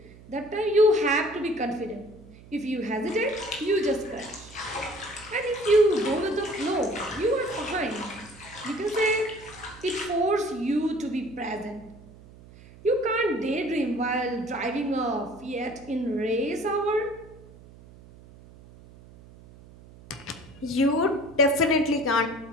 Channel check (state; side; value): noise; right; hum, 21 dB below the sound